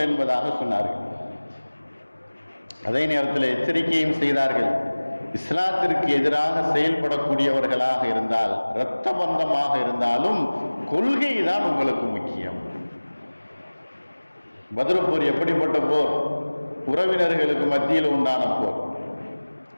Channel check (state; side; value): inverted; both; correlation -1.00